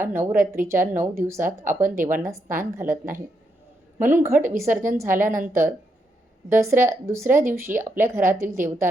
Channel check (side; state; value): both; normal; correlation 0.80